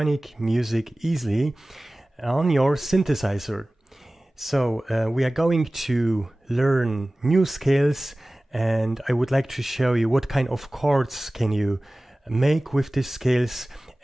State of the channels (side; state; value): both; normal; correlation 0.98